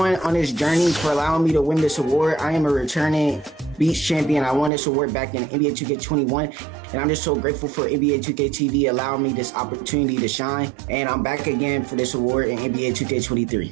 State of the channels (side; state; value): left; drops out; at 4.7 s